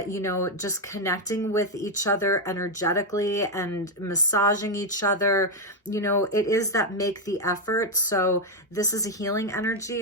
know, just connecting with each other energetically and massaging each other. You know, it is that make the effort. So this is a healing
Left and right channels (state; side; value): normal; both; correlation 0.03